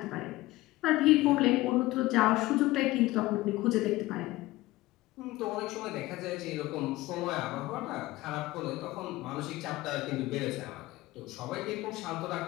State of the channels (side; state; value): right; quieter; 18.4 dB